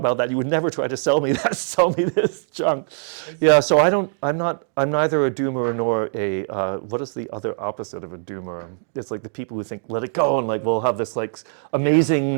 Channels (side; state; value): left; silent; digital silence